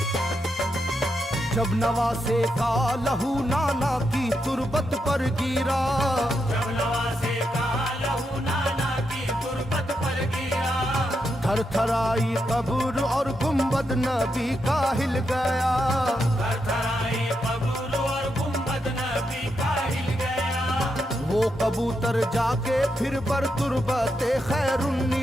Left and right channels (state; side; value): normal; both; correlation 0.83